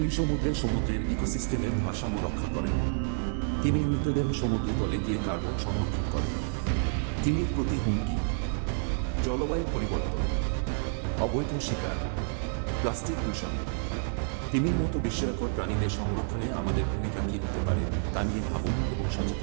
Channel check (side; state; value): left; silent; 58 dB below the other